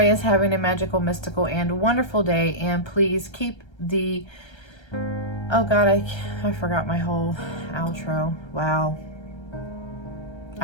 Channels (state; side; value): late; right; 1.3 ms